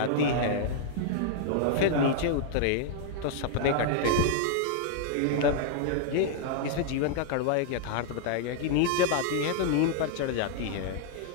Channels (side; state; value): both; different; correlation -0.01